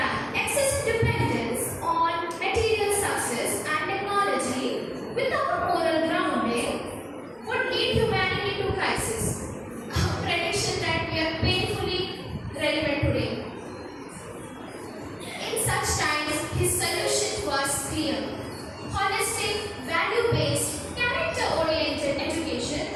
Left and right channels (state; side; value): identical; both; correlation 1.00